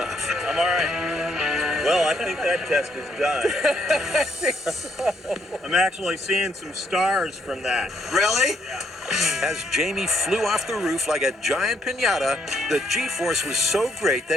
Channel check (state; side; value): normal; both; correlation 0.72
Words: I'm all right. Well, I think that test is done. I think so. I'm actually seeing some stars from that. Really? As Jamie flew off the roof like a giant piñata, the G-force was so great